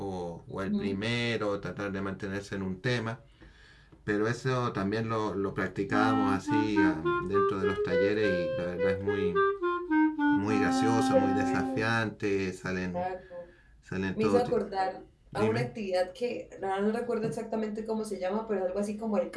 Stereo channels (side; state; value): both; identical; correlation 1.00